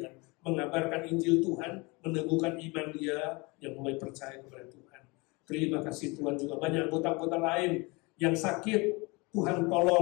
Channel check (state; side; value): quieter; right; 26.6 dB